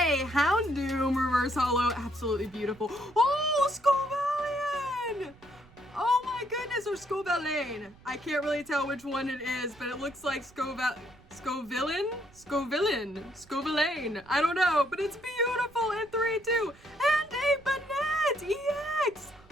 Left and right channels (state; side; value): noise; right; rumble, 26 dB below the sound